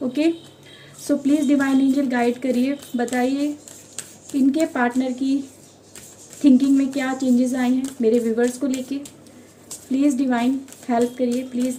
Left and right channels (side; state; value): both; identical; correlation 1.00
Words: Okay, so please divine angel guide करिए, बताइए इनके पार्टनर की थिंकिंग में क्या चेंजेस आए हैं मेरे व्यूवर्स को लेके। प्लीज़ डिवाइन हेल्प करिए, प्लीज़